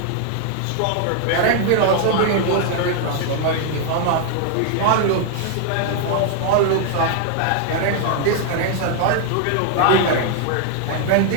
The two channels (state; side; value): different; both; correlation 0.00